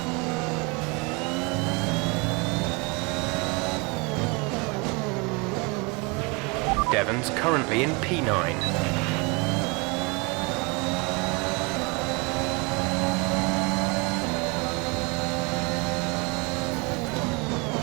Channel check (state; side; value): quieter; left; 29.4 dB